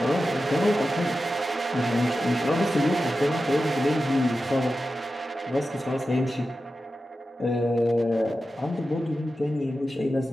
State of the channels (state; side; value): normal; both; correlation 0.92